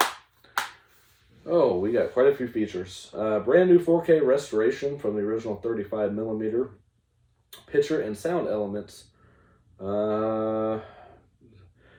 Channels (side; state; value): both; identical; correlation 1.00